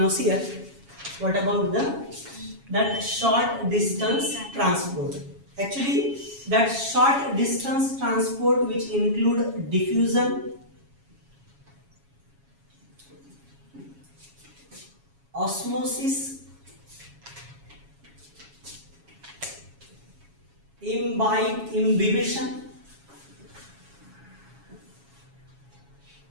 see here, what about that short distance transport? Actually, that short distance transport which include diffusion, osmosis, imbibition,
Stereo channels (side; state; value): left; late; 7.2 ms